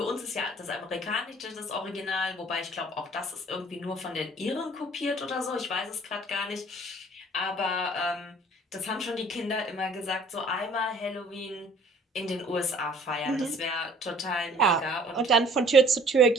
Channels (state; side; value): normal; both; correlation 0.54